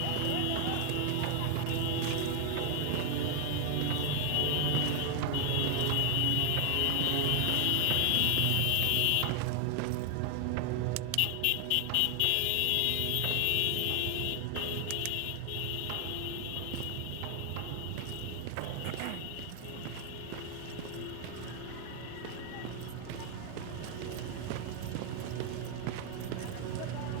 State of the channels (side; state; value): both; different; correlation 0.00